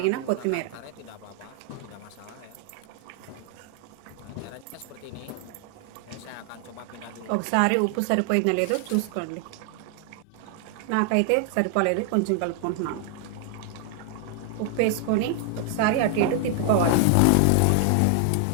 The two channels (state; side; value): different; both; correlation 0.00